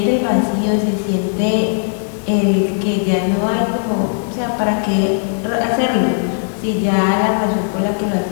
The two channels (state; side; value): silent; right; digital silence